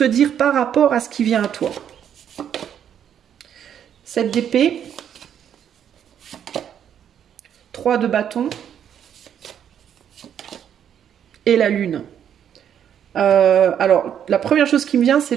dire par rapport à ce qui vient à toi? 7 d'épée, 3 de bâton et la lune. Alors, la première chose qui me vient,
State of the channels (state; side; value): quieter; left; 9.1 dB